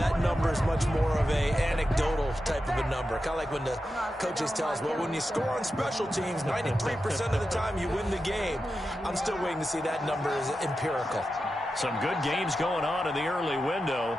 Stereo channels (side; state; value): both; normal; correlation 0.90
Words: number is much more of a anecdotal type of a number. Kind of like when the coaches tell us, well, when you score on special teams, 93% of the time you win the game. I'm still waiting to see that number is empirical. Some good games going on in the early window.